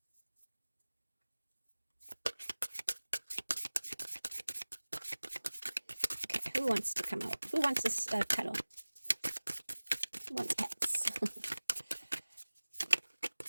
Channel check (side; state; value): both; inverted; correlation -1.00